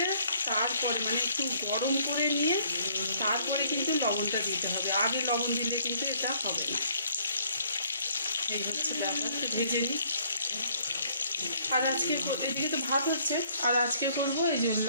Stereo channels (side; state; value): both; inverted; correlation -0.63